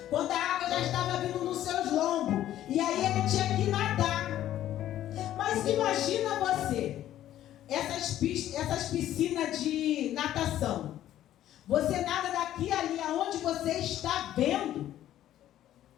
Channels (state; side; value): quieter; right; 12.5 dB